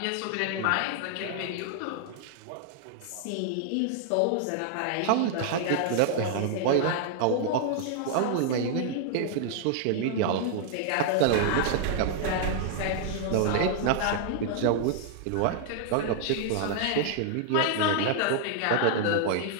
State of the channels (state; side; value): different; both; correlation -0.01